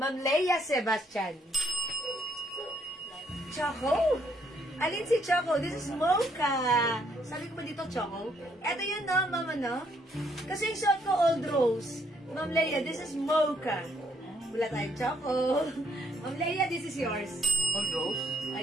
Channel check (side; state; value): both; normal; correlation 0.70